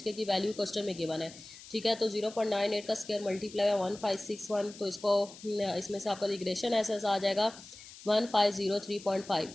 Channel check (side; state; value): left; noise; hiss, 17 dB below the sound